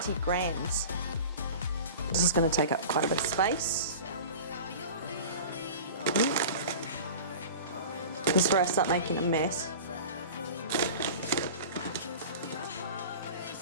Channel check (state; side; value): inverted; both; correlation -0.36